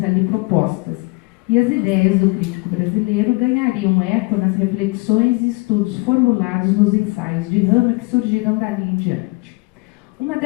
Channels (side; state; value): right; quieter; 27.2 dB